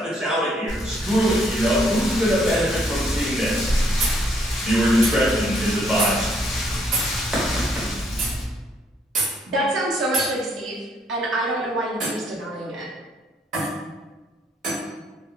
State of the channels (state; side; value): normal; both; correlation 0.69